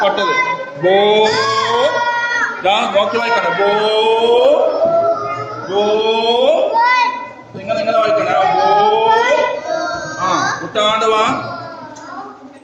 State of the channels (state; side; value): identical; both; correlation 1.00